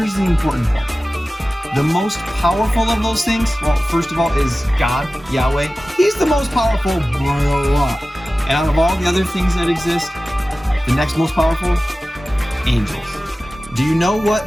the important part. The most powerful of those things, well, first of all, is God, Yahweh. He's the most powerful by a lot. And out of all the other things that exist, the next most powerful, angels. Do you know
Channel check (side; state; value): both; normal; correlation 0.96